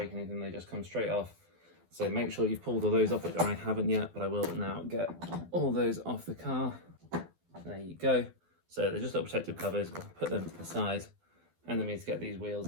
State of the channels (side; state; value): left; late; 12 ms